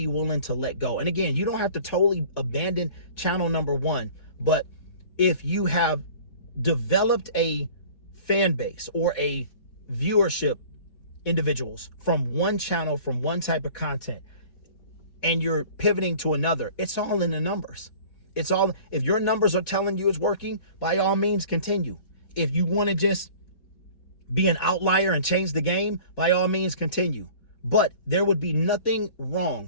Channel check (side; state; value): right; late; 4.1 ms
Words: willing to let go. And again, you don't have to totally abandon channel #1, but if you have developed a fan base or a viewership individuals from one channel, from one type of content, and you're pivoting to another, it's all in the numbers. It's all, if your numbers are telling you it's working, by all means continue. If you want to just be an outlier and change the game, by all means continue. But there would be nothing wrong